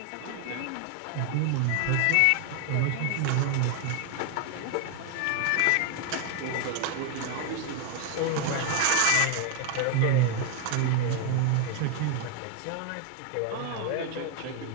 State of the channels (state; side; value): different; both; correlation 0.00